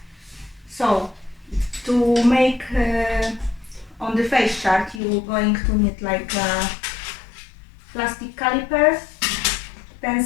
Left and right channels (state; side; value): drops out; right; at 5.0 s